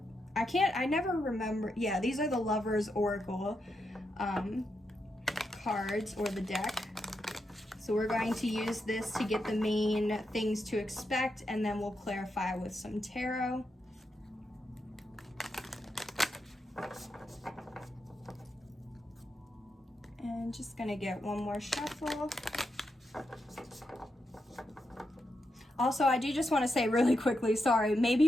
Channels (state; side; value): normal; both; correlation 0.84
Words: never remember. Yeah, these are the Lovers Oracle cards, or the deck. So we're going to use this to get the main things to expect, and then we'll clarify with some tarot. And just gonna get one more shuffle. Also, I do just want to say really quickly, sorry,